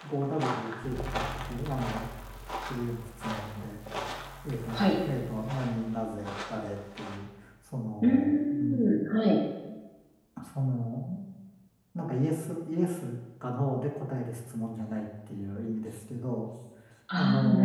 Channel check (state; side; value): identical; both; correlation 1.00